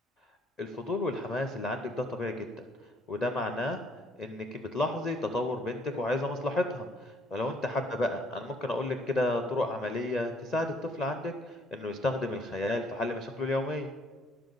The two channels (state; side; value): normal; both; correlation 0.64